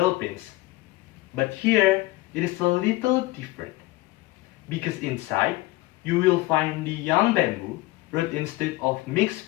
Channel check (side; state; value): right; quieter; 19.9 dB